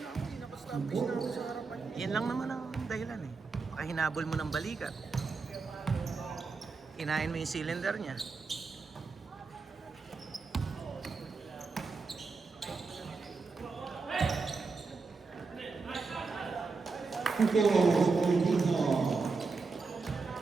ako, nakastablish na ako sa harapan. Yan lang naman ang dahilan eh. Baka hinabol mo ng balikat. Kinain mo yung cylinder niya.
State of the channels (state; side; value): quieter; left; 4.4 dB